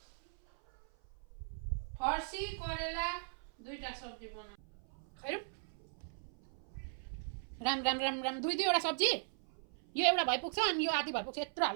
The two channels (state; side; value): silent; left; 52 dB below the other